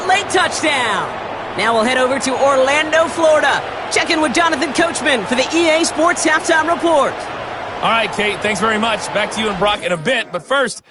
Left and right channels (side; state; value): both; identical; correlation 1.00